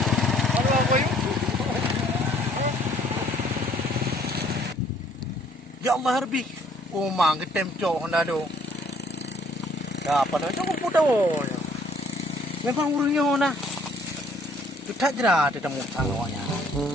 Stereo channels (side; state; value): both; normal; correlation 0.61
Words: Aduh boy. Ya Allah harbi. Oh mang ketem cok Honda do. Dah apa nak cok pudah. Memang urungnya Honda. Tu tak jera ada temu awaknya.